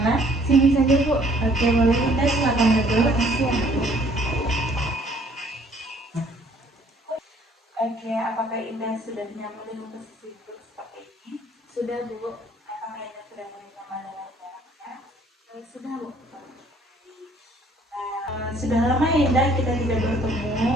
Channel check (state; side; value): normal; both; correlation 0.60